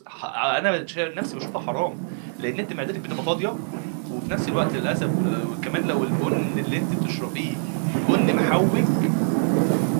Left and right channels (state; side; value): silent; left; digital silence